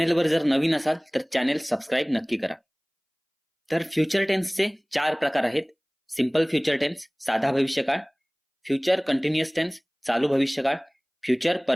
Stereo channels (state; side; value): identical; both; correlation 1.00